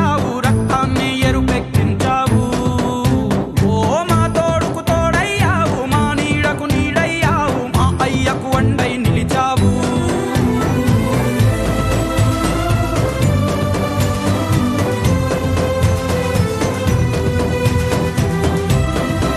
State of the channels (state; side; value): identical; both; correlation 1.00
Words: రక్తాన్ని ఎరుపెక్కించావు. ఓ మా తోడుకు తోడయ్యావు, మా నీడకు నీడయ్యావు, మా అయ్యకు వండై నిలిచావు.